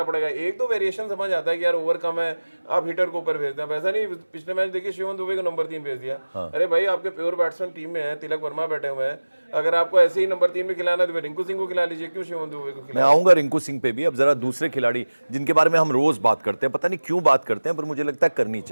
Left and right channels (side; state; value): both; inverted; correlation -1.00